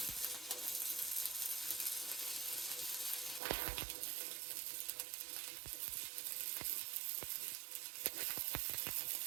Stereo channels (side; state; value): left; drops out; at 3.4 s